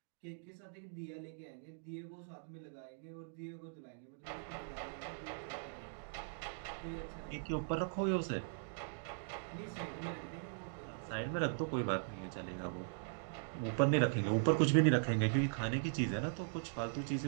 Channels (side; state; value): left; silent; digital silence